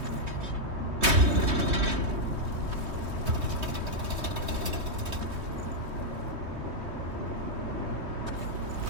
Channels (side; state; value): left; late; 3.2 ms